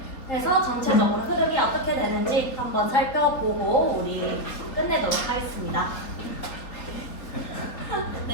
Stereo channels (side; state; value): right; late; 4.0 ms